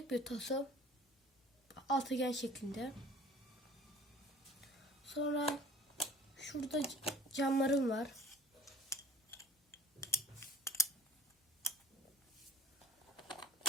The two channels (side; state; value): both; normal; correlation 0.50